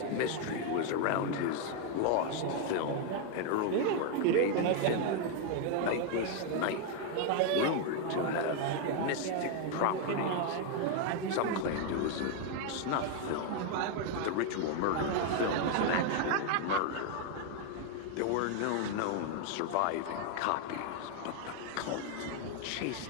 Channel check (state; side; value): different; both; correlation 0.01